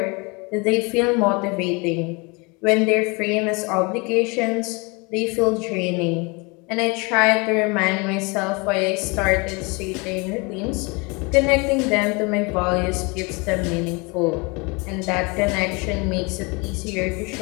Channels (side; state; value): right; quieter; 28.6 dB